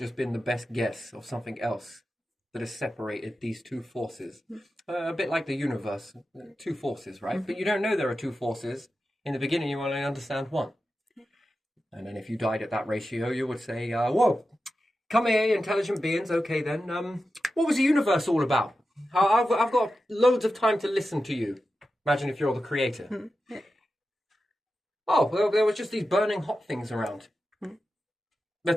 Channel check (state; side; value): normal; both; correlation 0.92